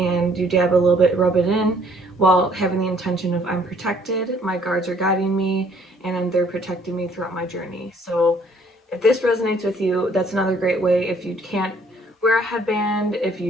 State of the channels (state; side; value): normal; both; correlation 0.61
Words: you dab a little bit, rub it in, while having the intention of I'm protected, my guards are guiding me, and they're protecting me throughout my journey. So if this resonates with you, that's another great way. If you can't wear a headband, if